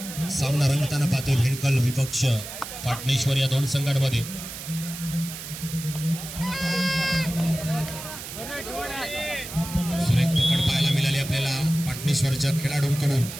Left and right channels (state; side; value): noise; right; hiss, 10 dB below the sound